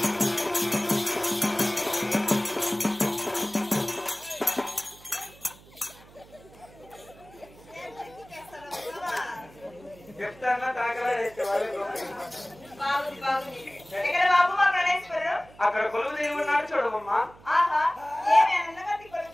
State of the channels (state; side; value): noise; right; hum, 23 dB below the sound